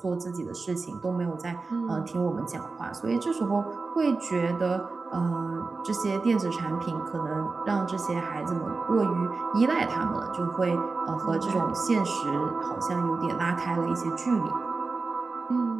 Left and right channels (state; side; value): quieter; left; 4.0 dB